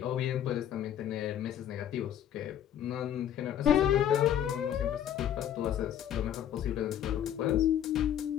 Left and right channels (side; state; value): right; quieter; 10.4 dB